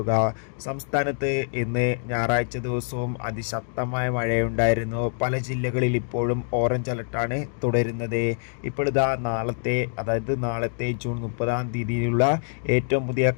സംസ്ഥാനത്ത് ഇന്ന് ഞായറാഴ്ച ദിവസവും അതിശക്തമായ മഴയുണ്ടായിരുന്നു. പല ജില്ലകളിൽ ഇപ്പോഴും ഓറഞ്ച് അലർട്ടാണ് തുടരുന്നത്. ഇപ്പോഴിതാ നാളത്തെ ജൂൺ 30 ഏറ്റവും പുതിയ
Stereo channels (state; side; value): silent; right; 62 dB below the other